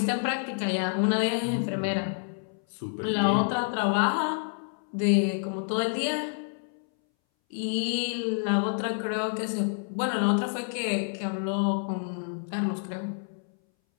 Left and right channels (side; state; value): right; silent; 59 dB below the other